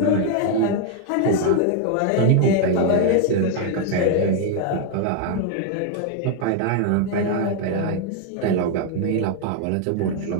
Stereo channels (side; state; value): both; different; correlation 0.00